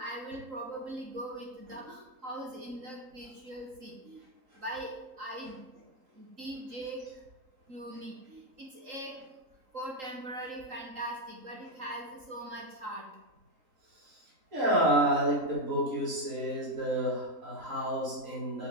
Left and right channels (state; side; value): late; left; 3.8 ms